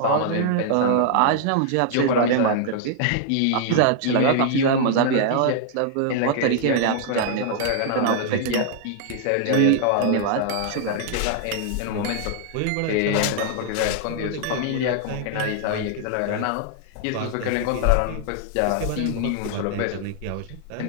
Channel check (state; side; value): different; both; correlation 0.00